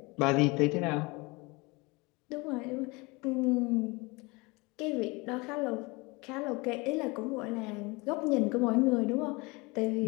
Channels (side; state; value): right; quieter; 25.6 dB